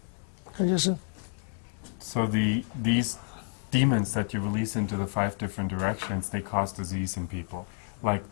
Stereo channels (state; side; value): silent; right; 58 dB below the other